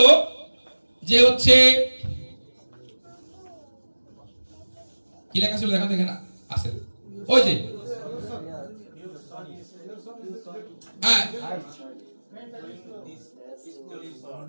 যে হচ্ছে কি লেখা ছিল দেখা দেখেন আছে ওই যে হ্যাঁ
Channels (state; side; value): inverted; both; correlation -1.00